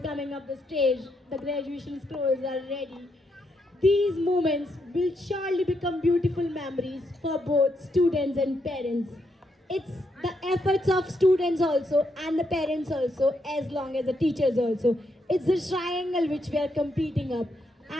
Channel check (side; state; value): both; normal; correlation 0.79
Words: coming up the stage. The graduation scrolls are ready. These moments will surely become beautiful memories for both students and parents. It's the efforts of students also and the parents also, as long as the teachers also. It's the triangle which we are competing up.